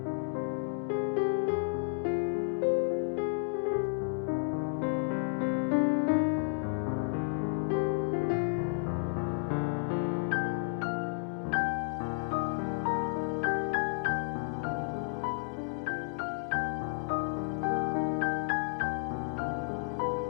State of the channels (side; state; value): right; silent; digital silence